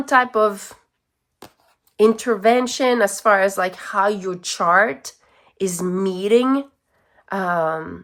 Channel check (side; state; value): both; identical; correlation 1.00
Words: type of intervention as far as like how your chart is meeting